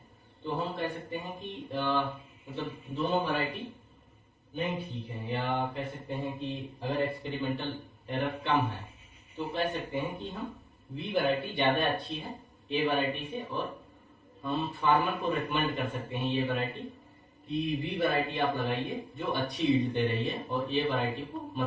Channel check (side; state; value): both; identical; correlation 1.00